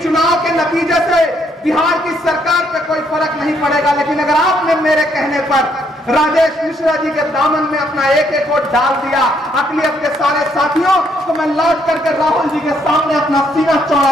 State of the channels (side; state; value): both; normal; correlation 0.71